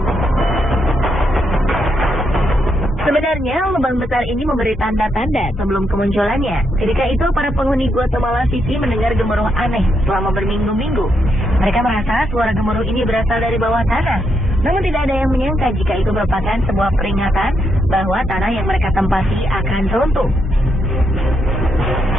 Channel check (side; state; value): both; normal; correlation 0.80